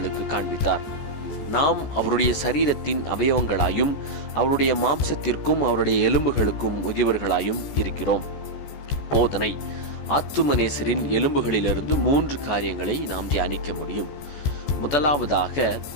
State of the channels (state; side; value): late; right; 14 ms